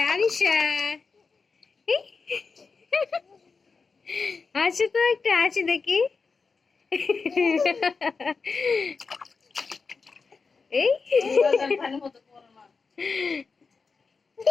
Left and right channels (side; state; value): right; quieter; 4.7 dB